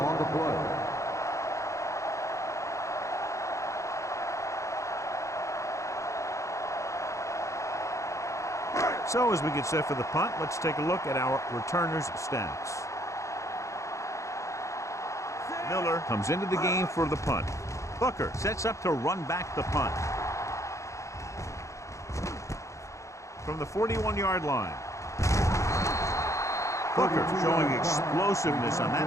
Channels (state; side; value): late; right; 0.15 ms